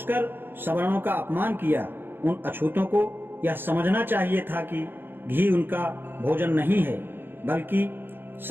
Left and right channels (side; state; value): left; late; 0.10 ms